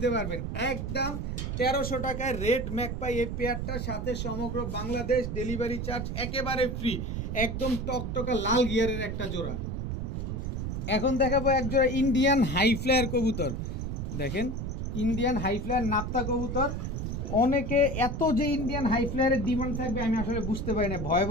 পারবেন, একদম 1300 টাকায় রেড ম্যাকপাই এই পেয়ারটার সাথে সমগ্র বাংলাদেশ ডেলিভারি চার্জ একেবারে ফ্রি। একদম টকটকা লাল গিয়ারের একটা জোড়া। এখন দেখাবো এক জোড়া ইন্ডিয়ান হাই ফ্লায়ার কবুতর। দেখেন ইন্ডিয়ান হাই ফ্লায়ার নাপ্তা কবুতর। অনেকে এত যে ইন্ডিয়ান হাই ফ্লায়ারের ডিমান্ড থাকবে আমি আসলে বুঝতে পারি না। ভয়ে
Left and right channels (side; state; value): right; noise; rumble, 3 dB below the sound